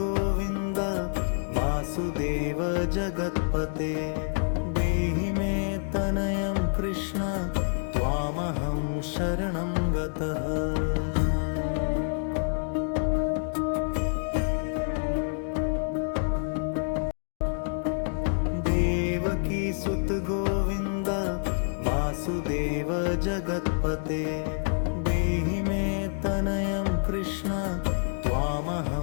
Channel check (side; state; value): right; silent; digital silence